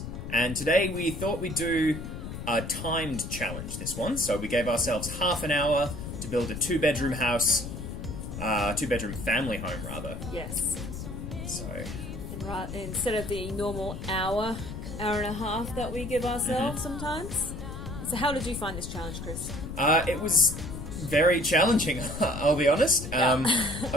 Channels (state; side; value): noise; left; rumble, 8 dB below the sound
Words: And today we thought we'd do a timed challenge, this one. So we gave ourselves half an hour to build a two-bedroom house, two-bedroom family home, rather. Yes. So... And instead of the normal hour and a half that we give ourselves sometimes. So how did you find this challenge, Chris? It was very challenging, I'll be honest. Yeah.